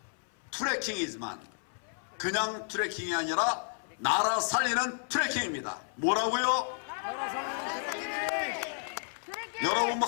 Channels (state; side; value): silent; right; 56 dB below the other